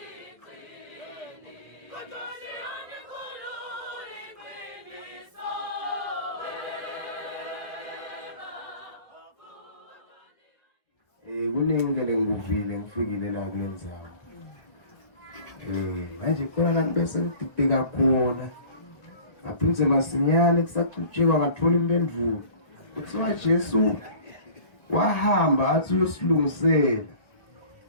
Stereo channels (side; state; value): right; late; 1.6 ms